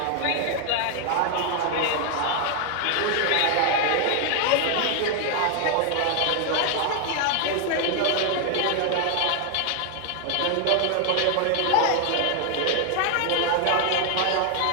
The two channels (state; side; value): different; both; correlation 0.00